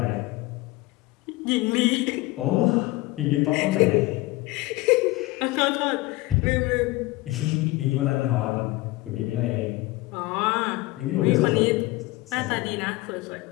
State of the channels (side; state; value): right; quieter; 20.5 dB